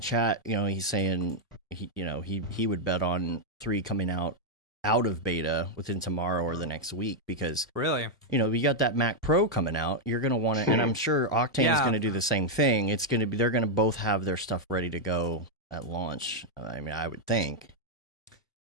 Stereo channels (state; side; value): normal; both; correlation -0.02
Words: he's saying he would bet on 3 coming out of beta within tomorrow or the next week, because really, we got that Mac Pro coming out. You're going to want to, and I'm sure Octane is going to do the same thing. They're going to both have their stuff ready to go at launch. I mean, I would think.